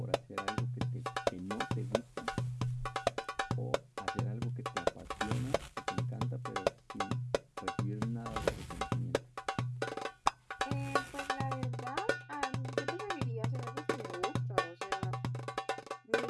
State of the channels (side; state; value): both; identical; correlation 1.00